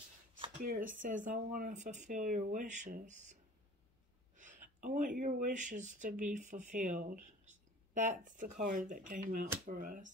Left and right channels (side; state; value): both; normal; correlation 0.45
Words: Spirit says, I want to fulfill your wishes. I want your wishes to be fulfilled. That's the card that came out for